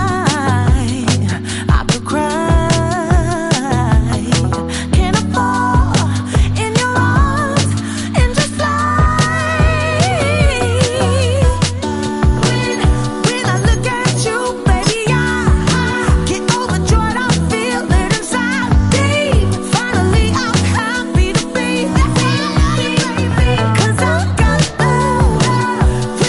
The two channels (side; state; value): both; identical; correlation 1.00